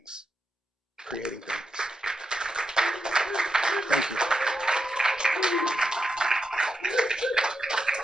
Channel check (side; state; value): both; normal; correlation 0.86